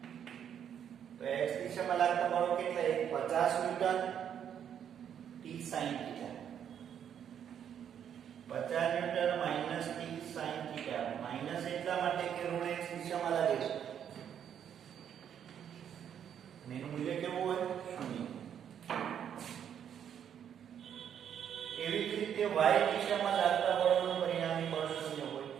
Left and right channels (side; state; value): left; quieter; 8.9 dB